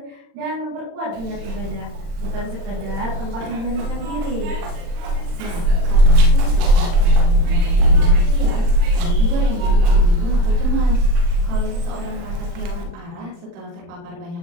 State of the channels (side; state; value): left; late; 36 ms